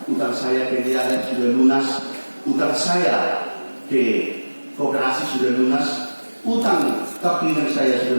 utang saya ke DIALEP sudah lunas, utang saya ke koperasi sudah lunas, utang kaplingan saya sudah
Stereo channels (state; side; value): inverted; both; correlation -1.00